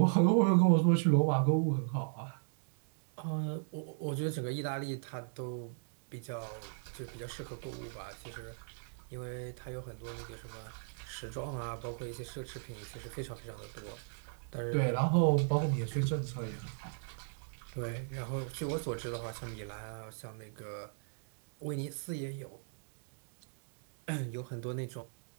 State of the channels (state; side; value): silent; left; digital silence